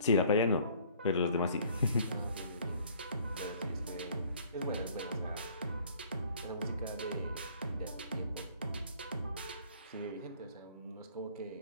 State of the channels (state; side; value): inverted; both; correlation -0.56